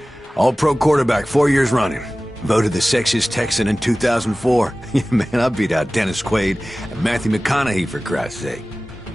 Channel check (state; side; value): normal; both; correlation 0.97